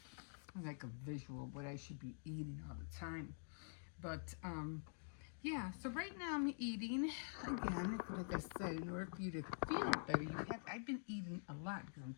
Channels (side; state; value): right; silent; digital silence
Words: Like a visual of what I should be eating all the time. But yeah. So right now I'm eating again. Like I said, in order for you to feel better, I've been eating a lot because I'm